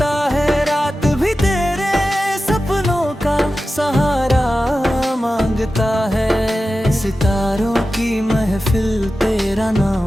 है, रात भी तेरे सपनों का सहारा मांगता है। सितारों की महफिल तेरा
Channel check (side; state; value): both; normal; correlation 0.94